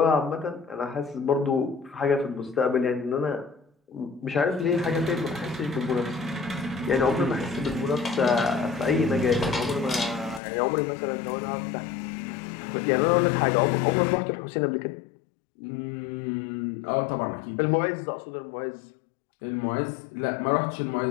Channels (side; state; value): right; drops out; at 10.4 s